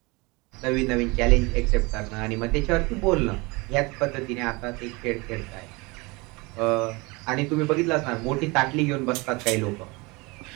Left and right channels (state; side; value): quieter; left; 25.5 dB